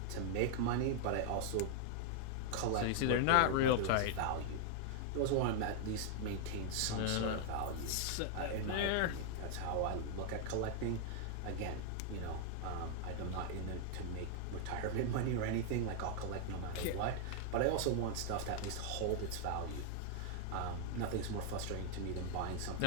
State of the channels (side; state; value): both; different; correlation 0.00